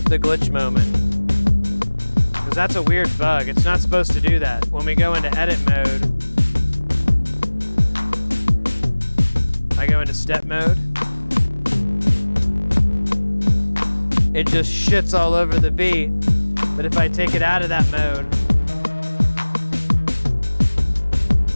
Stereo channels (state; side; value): inverted; both; correlation -1.00